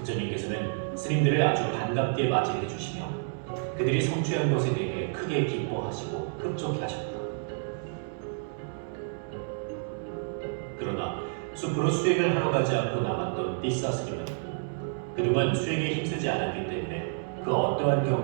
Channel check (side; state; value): left; silent; digital silence